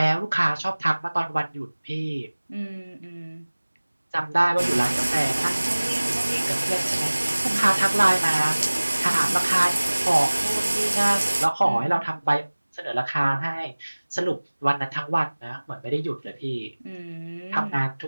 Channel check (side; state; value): both; inverted; correlation -1.00